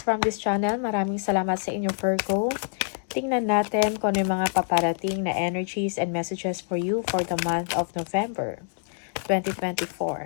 from this channel. Maraming salamat sa inyo Virgo. Tingnan natin kung ano yung mga paparating na energies and messages for you for the month of November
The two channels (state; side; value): silent; right; digital silence